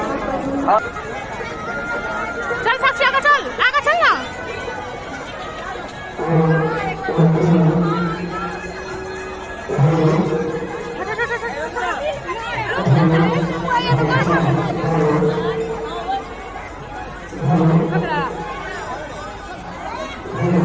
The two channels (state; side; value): identical; both; correlation 1.00